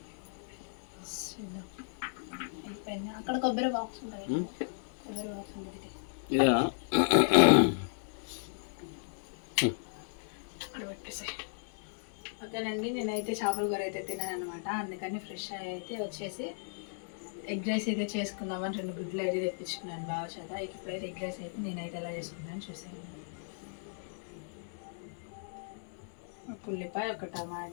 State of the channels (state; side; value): silent; right; 54 dB below the other